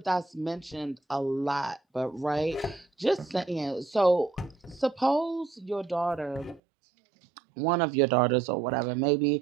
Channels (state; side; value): drops out; left; at 6.6 s